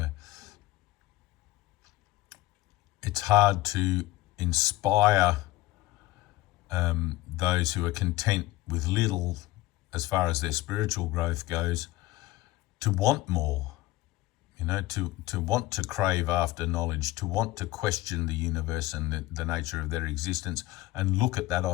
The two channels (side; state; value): right; quieter; 17.7 dB